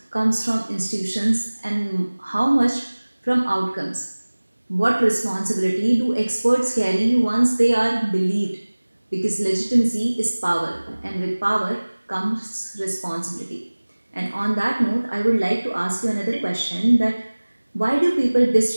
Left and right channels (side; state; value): both; inverted; correlation -1.00